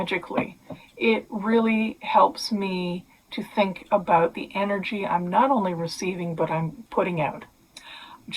It really helps me to think about the energy I'm not only receiving, but I'm putting out.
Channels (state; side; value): identical; both; correlation 1.00